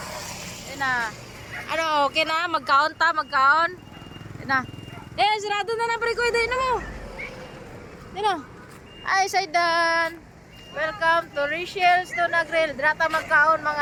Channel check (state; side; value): identical; both; correlation 1.00